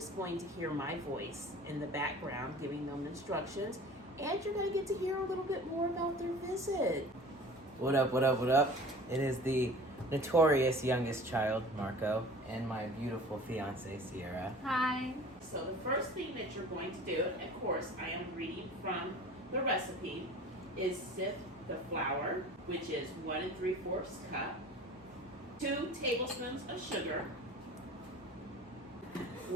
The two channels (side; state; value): both; normal; correlation 0.42